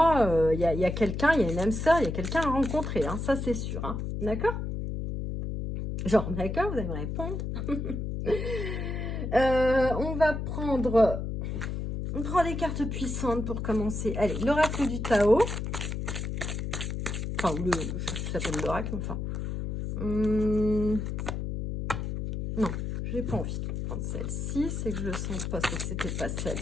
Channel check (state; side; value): noise; left; hum, 3 dB below the sound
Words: il y a quelqu'un, il y a une âme sœur, il y a quelqu'un à rencontrer, hein, ça c'est sûr, hein, d'accord? Genre, d'accord, vous allez me répondre. On va prendre... On prend des cartes puissantes pour commencer. Allez, l'oracle du Tao. Enfin, ça s'appelle l'oracle, enfin. Non, j'ai pas envie de prendre celle-ci. C'est que je le sens pas, c'est que c'était pas